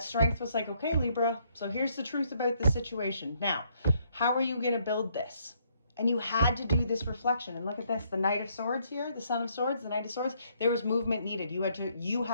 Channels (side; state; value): both; inverted; correlation -0.70